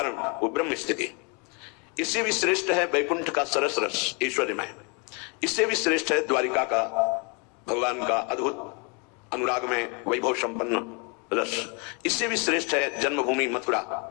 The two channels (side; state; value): right; quieter; 33.3 dB